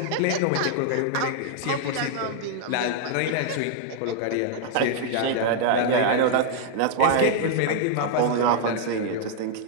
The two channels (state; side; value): different; both; correlation 0.00